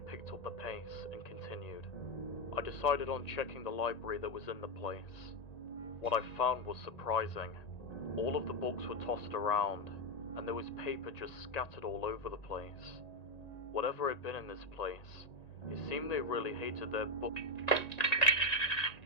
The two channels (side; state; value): right; late; 1.9 ms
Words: up the pace and continued. I decided on checking the library that was in the place. What I found was surprising. All of the books were tossed around, and there was paper just scattered all over the place. Whatever had been in this place, it seemed they really hated their book.